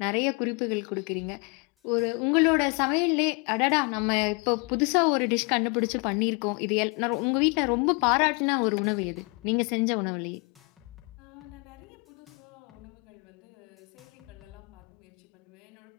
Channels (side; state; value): right; quieter; 32.1 dB